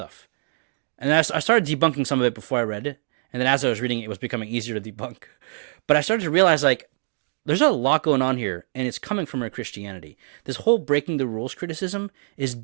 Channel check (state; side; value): silent; left; digital silence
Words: And I started debunking some of it before I read it. And then as I was reading it, it was becoming easier to debunk. But I started to realize, like, there's a lot going on here, and it's coming from our Christianity. This whole breaking the rules criticism is